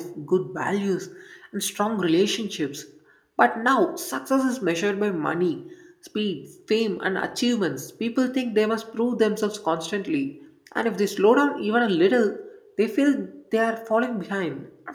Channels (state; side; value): identical; both; correlation 1.00